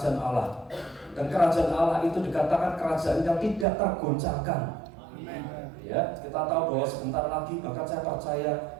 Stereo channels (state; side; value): drops out; left; at 3.7 s